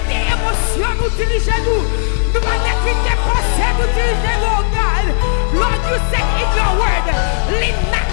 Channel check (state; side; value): silent; right; digital silence